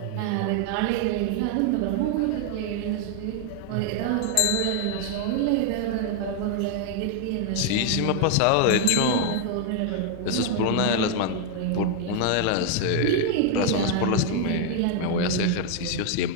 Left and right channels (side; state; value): both; different; correlation 0.00